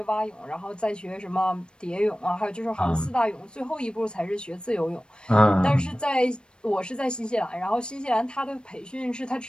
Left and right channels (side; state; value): right; late; 0.053 ms